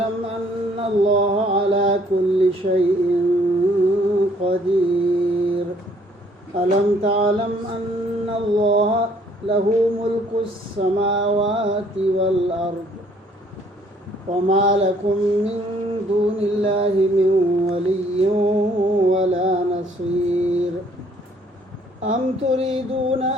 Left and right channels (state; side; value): normal; both; correlation 0.62